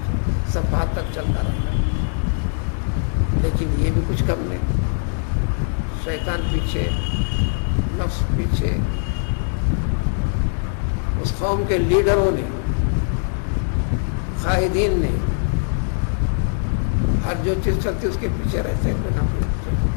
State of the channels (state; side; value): silent; right; digital silence